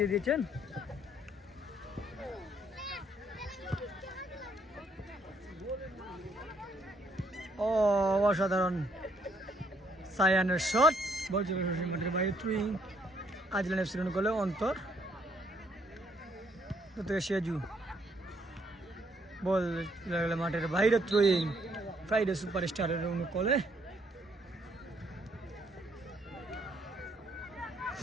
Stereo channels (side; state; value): both; normal; correlation 0.69